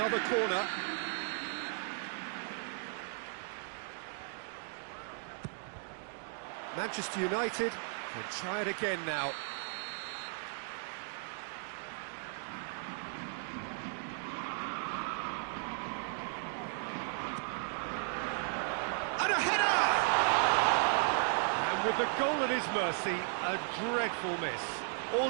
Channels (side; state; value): left; silent; 54 dB below the other